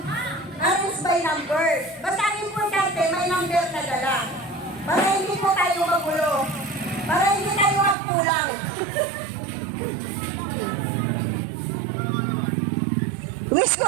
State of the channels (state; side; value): drops out; left; at 8.0 s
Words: by number. Basta importante, may number ka dala. Para hindi po tayo magulo. Para hindi tayo magkulang. Wish ko